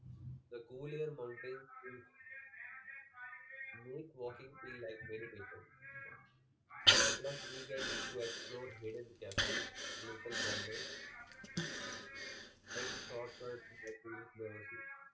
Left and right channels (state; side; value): identical; both; correlation 1.00